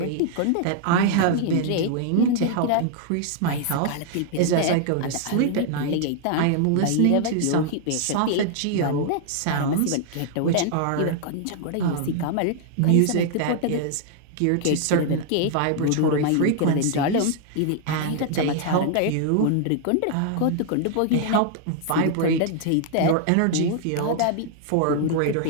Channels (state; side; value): different; both; correlation 0.00